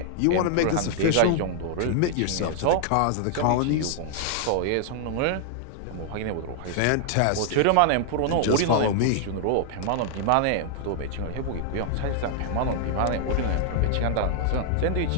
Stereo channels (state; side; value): different; both; correlation 0.00